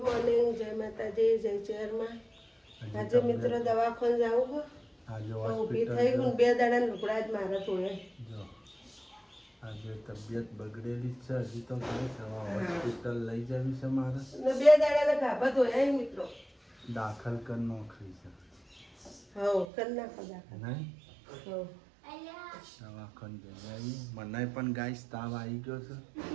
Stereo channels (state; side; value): drops out; left; at 19.7 s